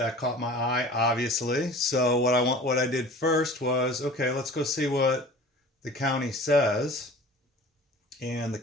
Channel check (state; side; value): normal; both; correlation 0.42